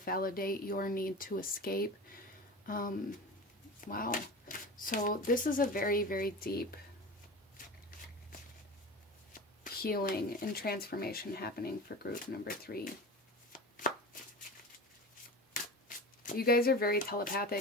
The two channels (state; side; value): normal; both; correlation 0.31